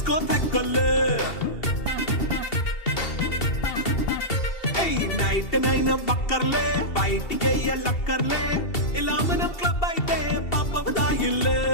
థెక్కలే. నైట్ నైన్ బక్కర్లే, బయటికి ఎల్లక్కర్లే, ఇలా మనం క్లబ్ అయితే పాపదాయిల్లే.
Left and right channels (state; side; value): late; right; 2.7 ms